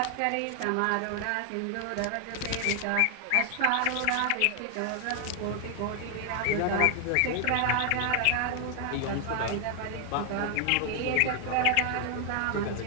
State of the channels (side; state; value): both; different; correlation 0.00